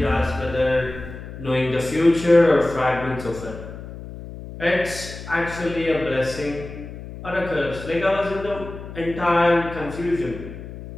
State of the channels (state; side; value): noise; left; hum, 12 dB below the sound